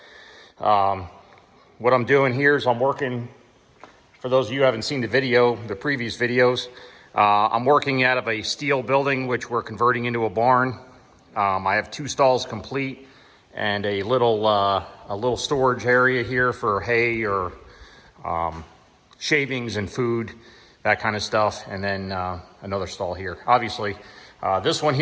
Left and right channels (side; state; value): both; identical; correlation 1.00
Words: what I'm doing here is I'm working. For those of you who haven't seen the previous videos, I'm working out of a steel building, which we're converting into a barn. I have 2 stalls complete and a little storage area here for hay or shavings and food, that kind of stuff. And then another stall here. Obviously, this one